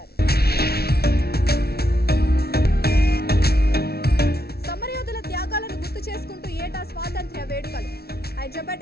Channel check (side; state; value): right; late; 0.45 ms